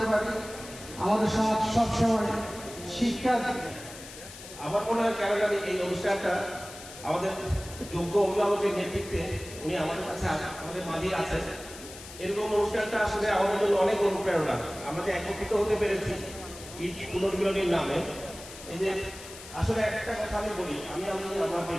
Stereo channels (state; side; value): noise; left; hiss, 15 dB below the sound